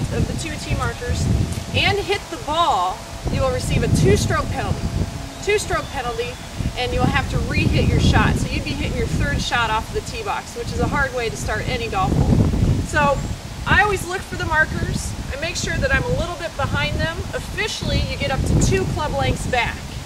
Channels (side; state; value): both; identical; correlation 1.00